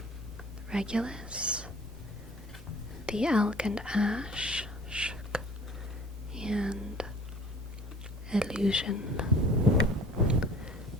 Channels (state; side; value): normal; both; correlation 0.48